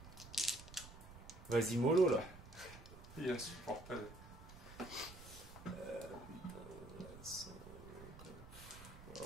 Vas-y mollo là. il est insupportable.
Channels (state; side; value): noise; right; rumble, 16 dB below the sound